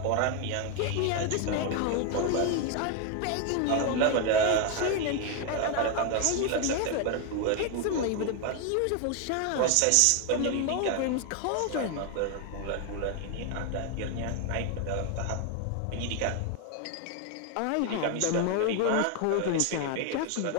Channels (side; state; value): both; different; correlation 0.01